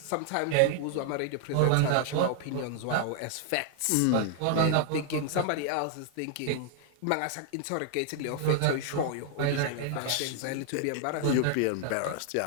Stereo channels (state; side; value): different; both; correlation 0.00